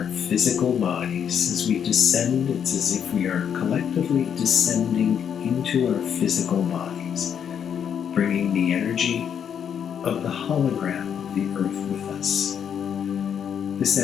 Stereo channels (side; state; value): right; quieter; 8.2 dB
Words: physical bodies, as we descend, it's as if we are collectively descending into our physical bodies, bringing the energy of the hologram of the earth with us. This